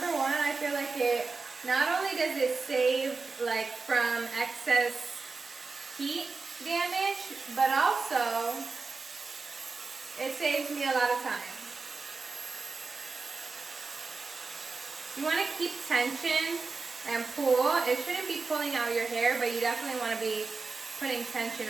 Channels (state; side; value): quieter; left; 4.1 dB